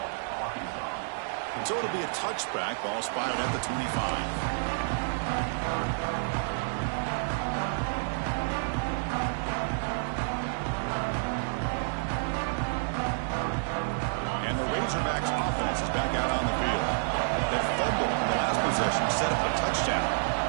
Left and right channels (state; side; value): silent; left; digital silence